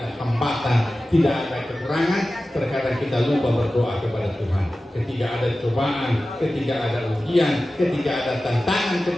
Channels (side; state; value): both; normal; correlation 0.95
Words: hambatan, tidak ada kekurangan, terkadang kita lupa berdoa kepada Tuhan. Ketika ada cobaan, ketika ada ujian, ketika ada tantangan,